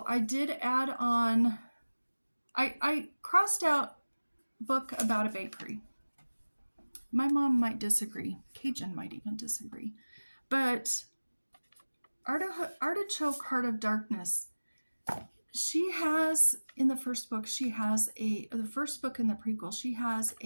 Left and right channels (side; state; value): both; inverted; correlation -1.00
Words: I did add on, I crossed out book about a bakery. My mom might disagree. Cajun might even disagree. But Artichoke, Heart of Darkness, she has, in the first book, the first book in the prequel, she has